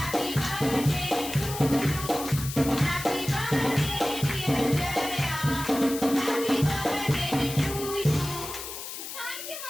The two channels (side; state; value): left; noise; hiss, 9 dB below the sound